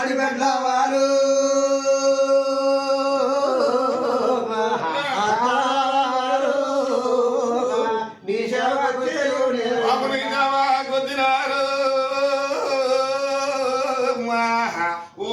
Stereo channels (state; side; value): identical; both; correlation 1.00